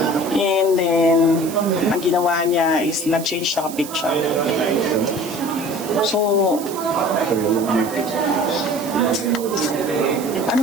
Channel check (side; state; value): right; noise; hiss, 13 dB below the sound